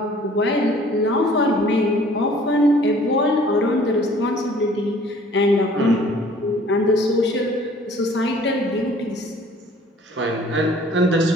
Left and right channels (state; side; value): normal; both; correlation 0.53